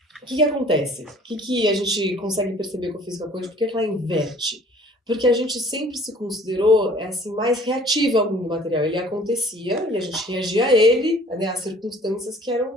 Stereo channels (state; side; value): normal; both; correlation 0.53